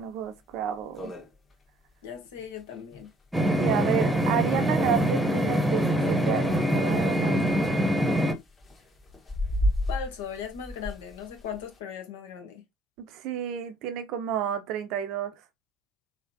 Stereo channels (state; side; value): normal; both; correlation 0.64